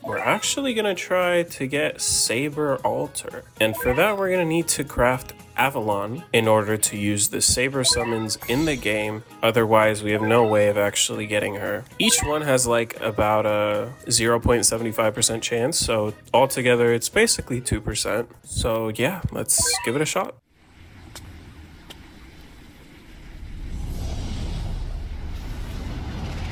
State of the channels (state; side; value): identical; both; correlation 1.00